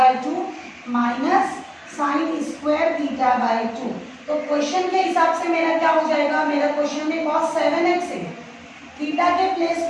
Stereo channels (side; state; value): both; identical; correlation 1.00